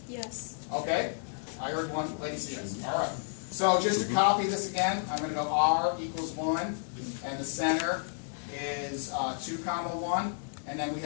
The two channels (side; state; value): right; silent; digital silence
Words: Yes. Okay? I heard one lady say yes. All right. So just to copy this again, I'm going to go r equals 1, and the center is 2 comma 1. And then we